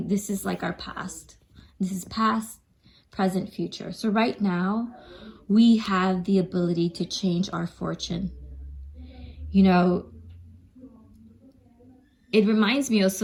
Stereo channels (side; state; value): both; identical; correlation 1.00